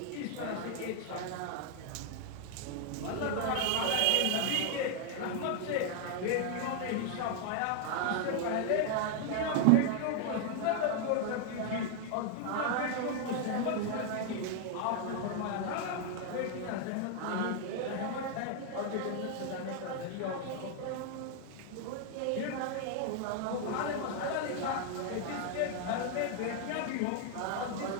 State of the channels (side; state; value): both; different; correlation 0.00